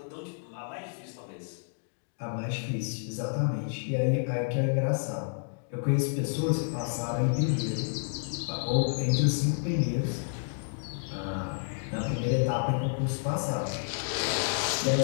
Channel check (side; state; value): right; silent; digital silence